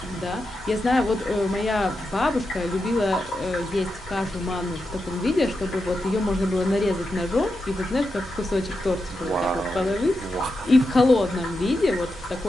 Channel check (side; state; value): both; normal; correlation 0.88